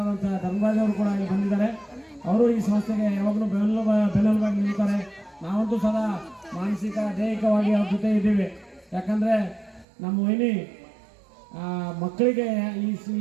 ಧರ್ಮರಾಜ್ ಅವರು ಕೂಡ ಇಲ್ಲಿ ಬಂದಿದ್ದಾರೆ. ಅವರು ಈ ಸಂಸ್ಥೆಗೆ ಯಾವಾಗಲೂ ಬೆನ್ನೆಲುಬಾಗಿ ನಿಲ್ತಾರೆ. ನಾವಂತೂ ಸದಾ ಮಾನಸಿಕ ದೈಹಿಕವಾಗಿ ಅವ್ರ ಜೊತೆ ಇದ್ದೀವಿ. ಯಾಕಂದರೆ ನಮ್ಮ ವೈನಿ ಮಕ್ಕಳಿಗೆ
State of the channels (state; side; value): drops out; left; at 9.9 s